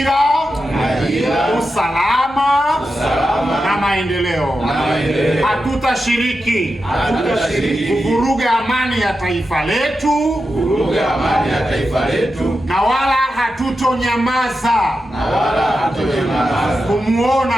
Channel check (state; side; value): normal; both; correlation 0.89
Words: usalama na maendeleo. Hatutashiriki kuvuruga amani ya taifa letu, na wala hatutonyamaza